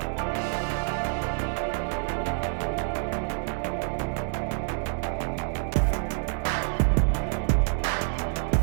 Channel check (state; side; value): silent; left; digital silence